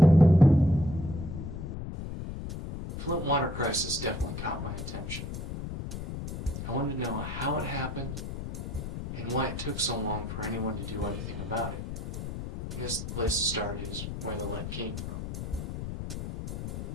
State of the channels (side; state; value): left; noise; rumble, 6 dB below the sound